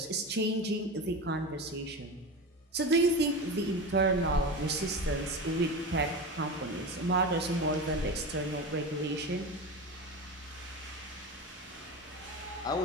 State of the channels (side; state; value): both; normal; correlation 0.25